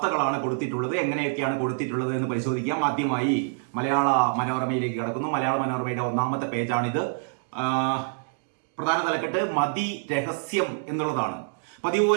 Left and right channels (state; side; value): silent; left; digital silence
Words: കൊടുത്തിട്ടുള്ളത്, എങ്ങനെയൊക്കെയാണ് കൊടുത്തിട്ടുള്ളത് എന്ന് പരിശോധിക്കാം. ആദ്യമായി മലയാള മനോരമയിലേക്ക് കടക്കുന്നു. മലയാള മനോരമയുടെ ഒന്നാമത്തെ പേജാണിത്. പ്രധാന തലക്കെട്ട് മതി രഹസ്യം എന്നുള്ളതാണ്. പതിവ്